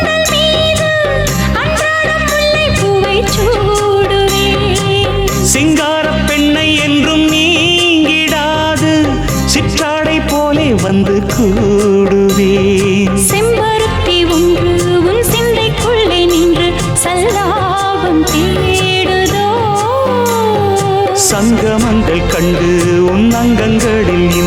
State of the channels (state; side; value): identical; both; correlation 1.00